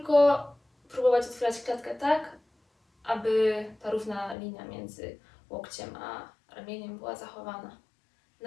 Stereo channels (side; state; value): right; drops out; at 4.4 s